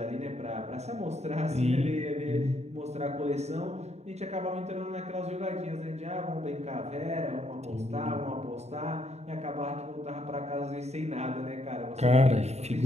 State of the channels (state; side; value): late; left; 0.32 ms